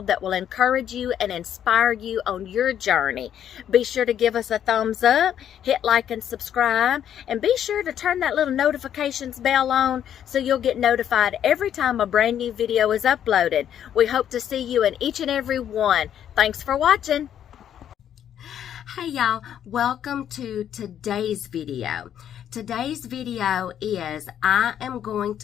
that will encourage you and inspire you on your journey. Be sure to give us a thumbs up, hit like and subscribe, and be sure to turn that little notifications bell on so you'll get notified every time a brand new video is uploaded. We hope to see you in each and every one. Thanks for watching. Hey y'all, welcome to today's video. Today's video is I am going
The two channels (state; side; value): quieter; right; 9.9 dB